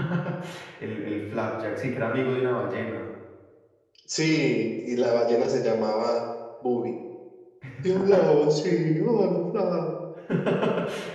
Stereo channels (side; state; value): both; identical; correlation 1.00